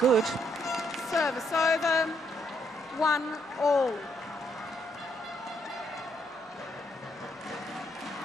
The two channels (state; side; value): normal; both; correlation 0.73